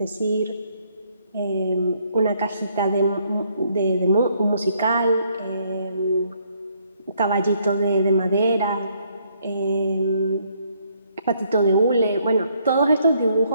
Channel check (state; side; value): inverted; both; correlation -0.70